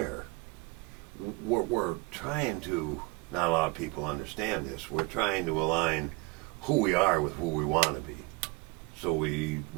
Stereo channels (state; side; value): quieter; left; 25.4 dB